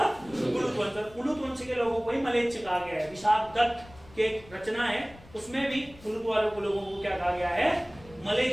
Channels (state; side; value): noise; left; rumble, 22 dB below the sound